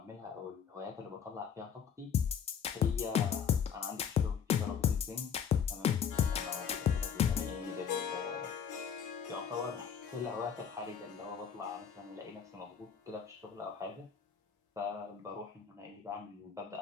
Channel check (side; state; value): right; quieter; 7.7 dB